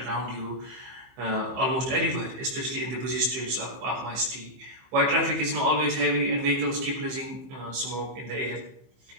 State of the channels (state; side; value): late; left; 15 ms